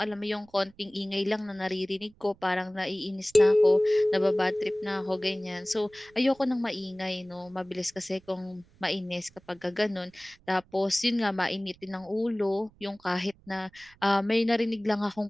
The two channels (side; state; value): right; noise; rumble, 29 dB below the sound